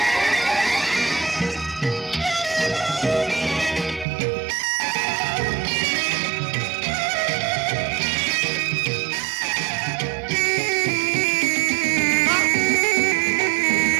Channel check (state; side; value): drops out; left; at 4.0 s